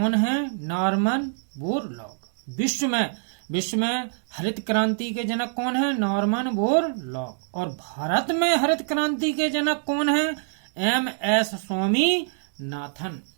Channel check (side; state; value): left; silent; digital silence